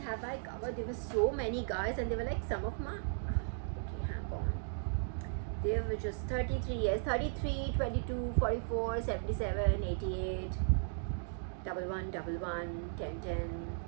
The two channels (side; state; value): left; silent; digital silence